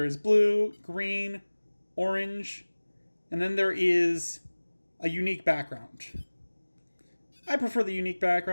is blue, green, orange, and then there is a unique background. I prefer the unique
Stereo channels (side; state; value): both; inverted; correlation -1.00